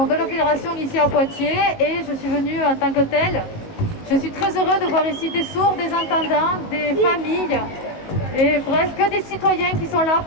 la fédération ici à Poitiers et je suis venue en tant que telle. Je suis très heureux de voir ici des sourds, des entendants, des familles et bref, que des citoyens qui sont là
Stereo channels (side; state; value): right; late; 19 ms